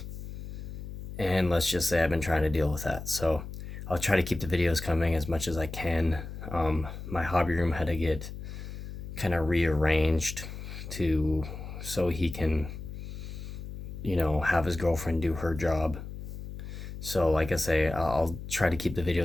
And let's just say I've been trying to deal with that. So I'll try to keep the videos coming as much as I can. My hobby room had to get kind of rearranged so he can, have his girlfriend do her job. So like I say, I'll try to keep the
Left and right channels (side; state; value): left; noise; hum, 9 dB below the sound